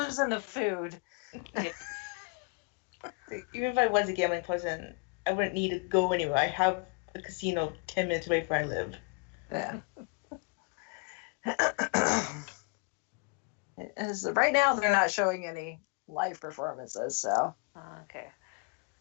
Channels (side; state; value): right; quieter; 32.6 dB